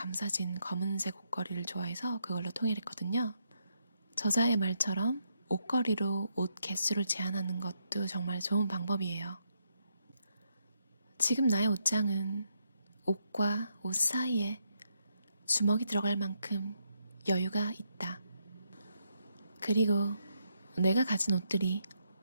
검은색 옷걸이를 좋아해서 그걸로 통일했거든요. 저자의 말처럼 옷걸이로 옷 개수를 제한하는 것도 정말 좋은 방법이에요. 지금 나의 옷장은 옷과 옷 사이에 주먹이 들어갈 만큼 여유가 있다. 그리고 내가 가진 옷들이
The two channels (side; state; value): both; inverted; correlation -0.79